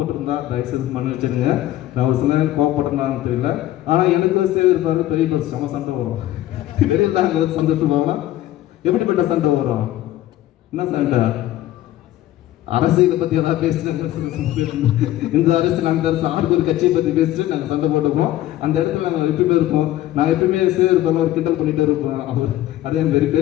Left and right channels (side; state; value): right; quieter; 14.2 dB